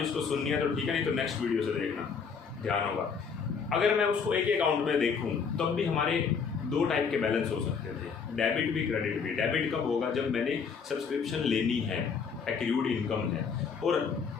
जिसको सुननी है तो ठीक है, नहीं तो नेक्स्ट वीडियो से देखना, ध्यान होगा। अगर मैं उसको एक ही अकाउंट में देखूँ तब भी हमारे 2 टाइप के बैलेंस हो सकते थे, डेबिट भी क्रेडिट भी। डेबिट कब होगा? जब मैंने सब्सक्रिप्शन लेनी है, एक्रूड इनकम है। और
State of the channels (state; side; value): quieter; right; 5.9 dB